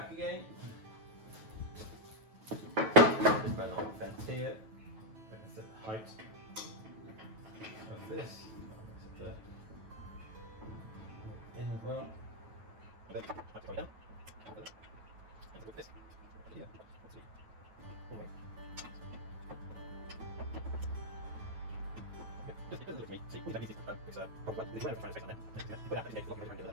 again. Just run on the fence here. I can set the height of this. I'll set the in as well. Then I go down. And with this here. It doesn't look to me. See, all that needs is it's probably there's a space on there. Put that against the lock around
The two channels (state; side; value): late; left; 9.2 ms